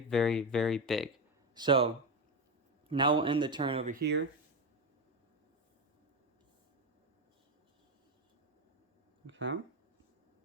very big. So now we'll end the turn over here. Okay.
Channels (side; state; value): both; normal; correlation 0.14